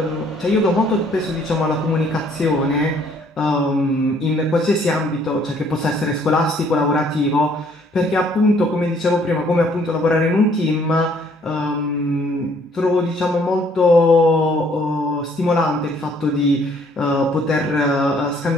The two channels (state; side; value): normal; both; correlation 0.63